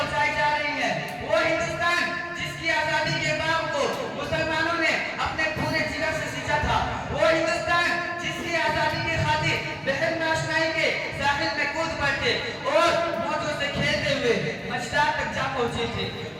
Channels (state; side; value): identical; both; correlation 1.00